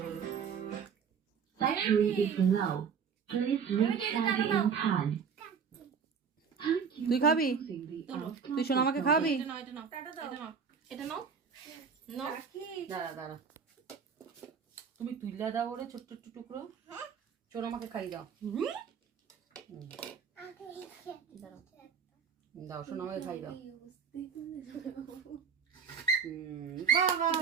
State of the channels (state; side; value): quieter; left; 6.6 dB